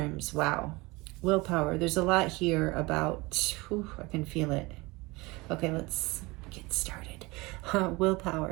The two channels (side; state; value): left; quieter; 23.4 dB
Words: wow. Willpower, there's a lot here about, I can feel it. Okay, let's get started.